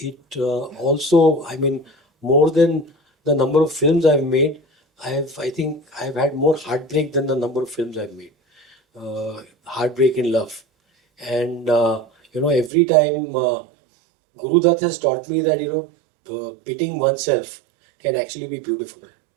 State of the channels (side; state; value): left; drops out; at 12.7 s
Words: also, I mean, more than the number of films I've made, I think I've had more heartbreak than the number of films I've made. Heartbreak in love. And, you know, every time Guru Dutt has taught me that, you know, pitting oneself can actually be beautiful.